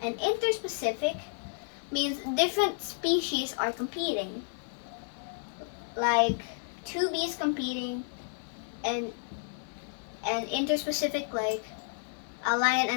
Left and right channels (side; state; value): right; silent; digital silence